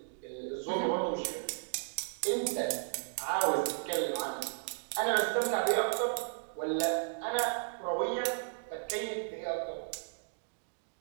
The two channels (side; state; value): left; silent; digital silence